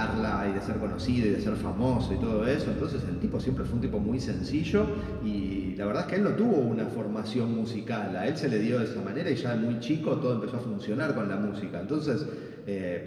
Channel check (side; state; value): both; identical; correlation 1.00